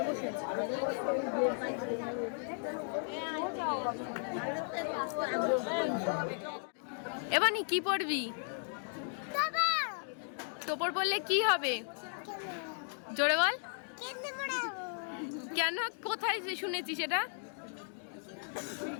বসে আছি। এবার নি কি পড়বি? তোপর পড়লে কি হবে? জোরে বল। কেন, কোথায় শুনেছি সেটা?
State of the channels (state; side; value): silent; right; 54 dB below the other